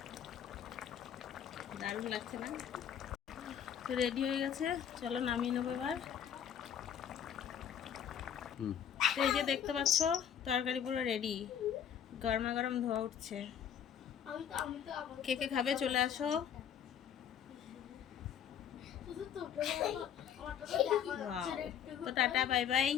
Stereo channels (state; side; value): quieter; right; 8.8 dB